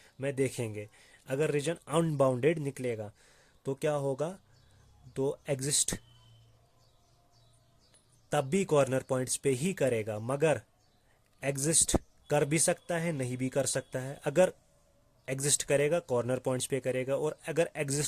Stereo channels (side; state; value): both; identical; correlation 1.00